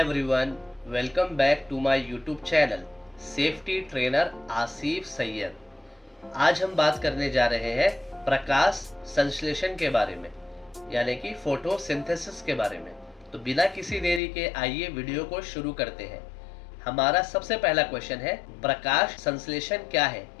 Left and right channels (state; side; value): drops out; right; at 14.2 s